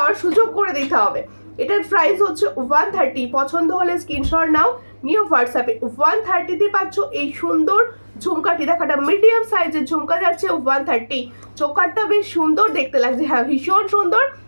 সুযোগ করে দিতে হবে। এটার প্রাইস হচ্ছে 130। পছন্দ হলে স্ক্রিনশট নাও, নিয়ে হোয়াটসঅ্যাপে। 130-তে পাচ্ছ এই সুন্দর ঝুমকাটি। দেখো একটা মিডিয়াম সাইজের ঝুমকা যাচ্ছে 130। চোকারটা বেশ সুন্দর দেখতে লাগছে, হ্যাঁ ভীষণ সুন্দর,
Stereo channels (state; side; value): inverted; both; correlation -1.00